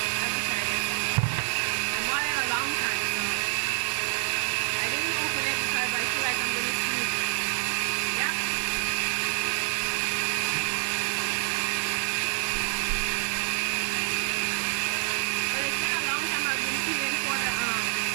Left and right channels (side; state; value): left; silent; digital silence